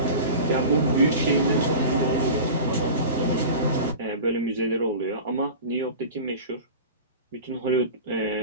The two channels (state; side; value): inverted; both; correlation -0.34